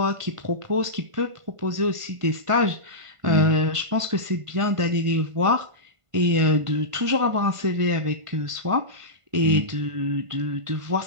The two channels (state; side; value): late; left; 1.5 ms